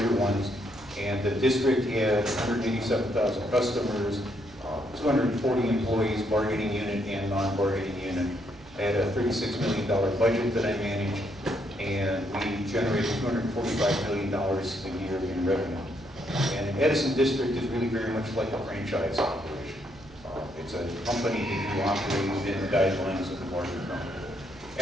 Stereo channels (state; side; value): noise; right; hum, 22 dB below the sound